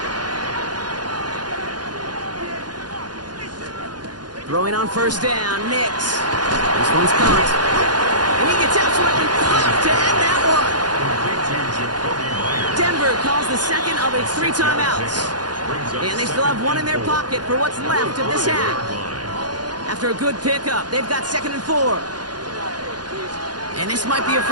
Throwing on 1st down, Nix. This one's caught. And he gets absolutely pumped to end that one. Denver calls the 2nd of its 3 timeouts. And they still have 1 in their pocket for what's left of this half. After a good pickup, they've got 2nd and 4. And this might be a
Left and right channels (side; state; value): left; late; 0.69 ms